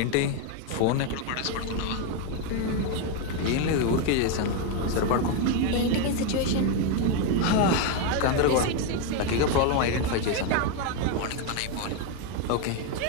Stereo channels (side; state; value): both; different; correlation 0.01